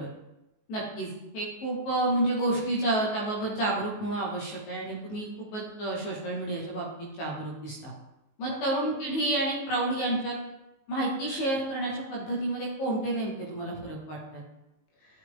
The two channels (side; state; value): right; late; 19 ms